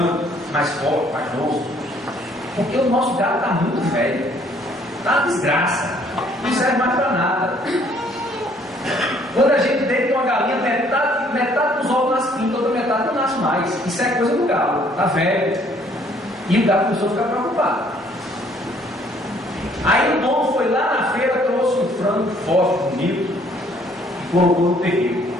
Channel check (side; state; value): both; normal; correlation 0.62